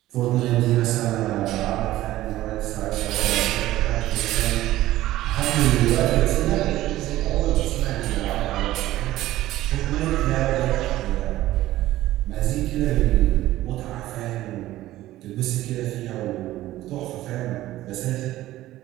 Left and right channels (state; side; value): quieter; left; 15.4 dB